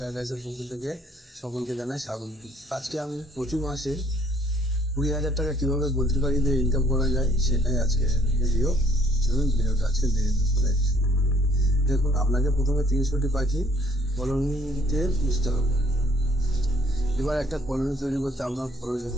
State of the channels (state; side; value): normal; both; correlation 0.61